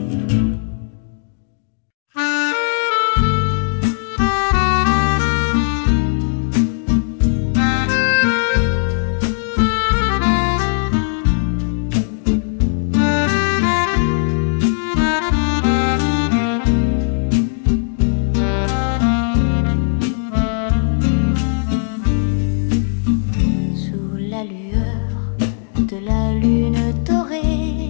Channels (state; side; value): silent; right; digital silence